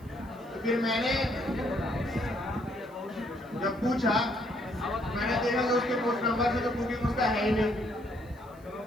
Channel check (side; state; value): right; noise; hiss, 29 dB below the sound